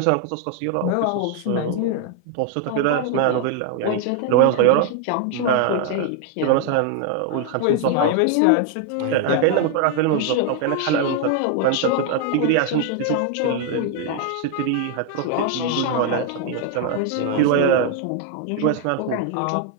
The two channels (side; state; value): both; different; correlation 0.01